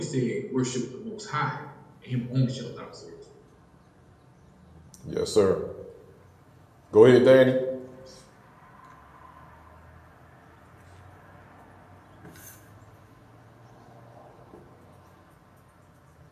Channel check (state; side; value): identical; both; correlation 1.00